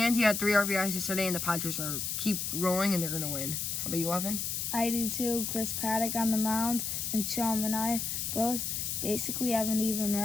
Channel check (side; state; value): left; noise; hiss, 2 dB below the sound